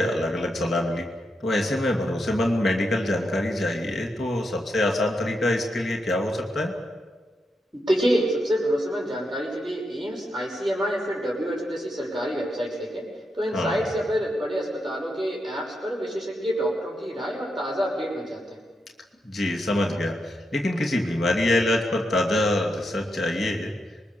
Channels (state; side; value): normal; both; correlation 0.84